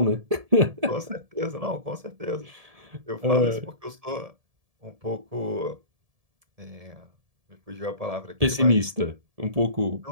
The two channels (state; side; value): late; left; 1.7 ms